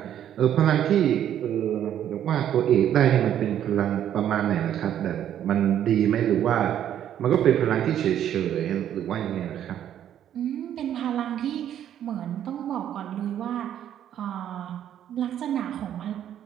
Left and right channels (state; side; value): quieter; left; 10.5 dB